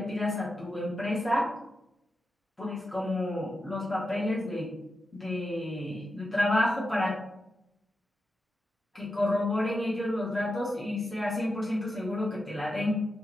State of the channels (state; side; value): normal; both; correlation 0.88